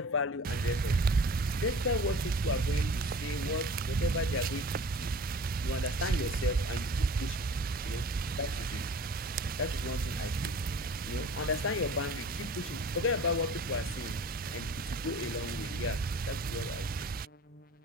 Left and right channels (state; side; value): normal; both; correlation 0.43